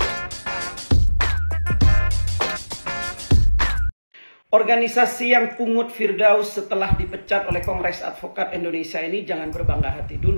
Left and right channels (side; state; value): both; inverted; correlation -1.00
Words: Organisasi yang pungut Firdaus setelah dipecat oleh Kongres Advokat Indonesia ini jangan berbangga hati